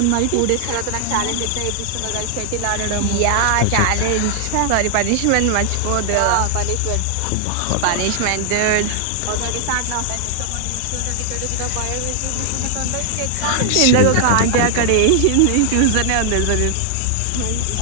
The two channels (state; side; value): different; both; correlation 0.00